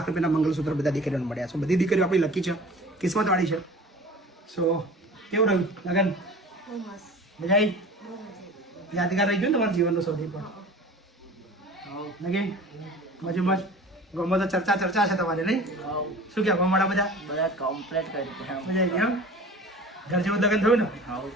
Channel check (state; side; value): normal; both; correlation 0.41